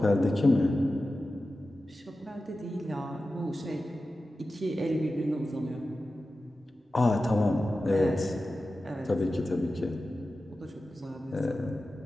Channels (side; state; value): both; normal; correlation 0.94